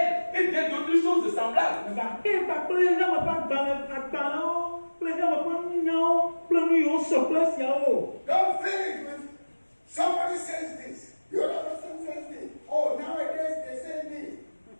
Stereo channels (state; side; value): inverted; both; correlation -1.00